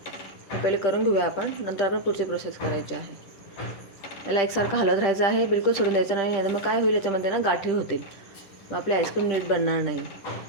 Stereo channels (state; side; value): late; right; 10 ms